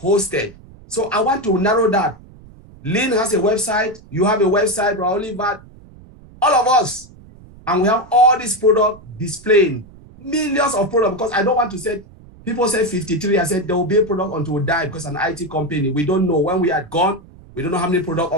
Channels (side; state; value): right; noise; rumble, 22 dB below the sound